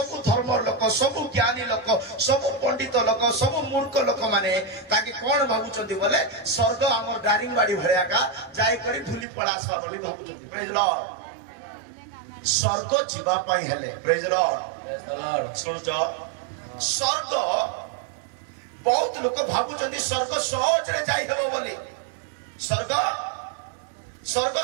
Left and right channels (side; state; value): left; drops out; at 9.2 s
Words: धर्म लोक सबु ज्ञानी लोक सबु पंडित लोक सबु मूर्ख लोक माने ताकि कोन भाबुचंती बोले स्वर्ग हमर दारिंगबाड़ी भरिया का जाय करी धुली पड़ासवा बोली भाबुचंती प्रेज लॉर्ड स्वर्ग जीवा पाई हेले प्रेज लॉर्ड सुनजो स्वर्ग बहुत लोक भाबुचंती स्वर्ग सहज रे जाई हेबो बोली स्वर्ग स्वर्ग